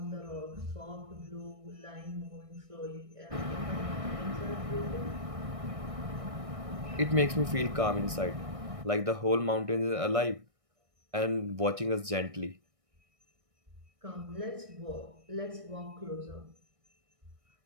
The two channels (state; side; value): late; left; 1.6 ms